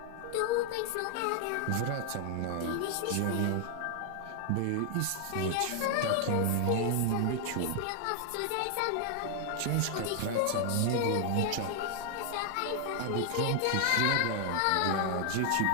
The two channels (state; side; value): different; both; correlation 0.00